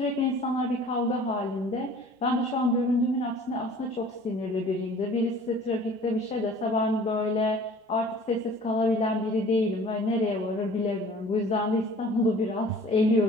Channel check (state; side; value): normal; both; correlation 0.48